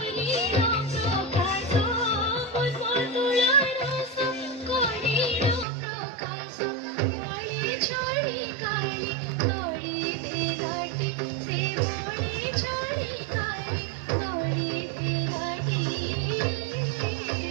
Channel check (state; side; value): drops out; left; at 5.7 s